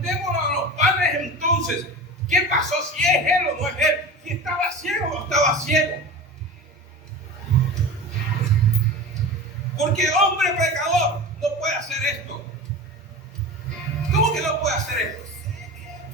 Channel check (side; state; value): both; normal; correlation 0.32